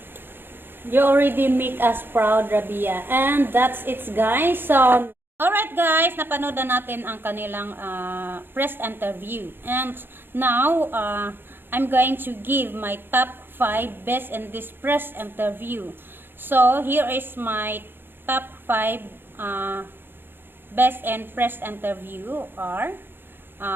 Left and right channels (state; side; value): late; left; 0.10 ms